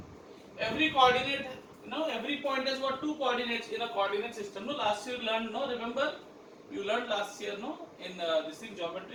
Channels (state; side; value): identical; both; correlation 1.00